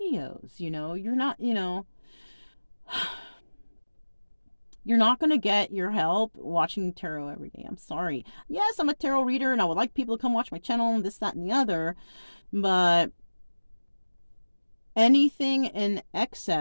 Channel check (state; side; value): inverted; both; correlation -1.00